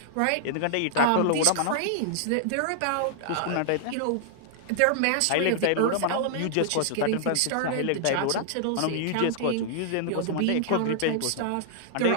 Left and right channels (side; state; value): both; different; correlation -0.01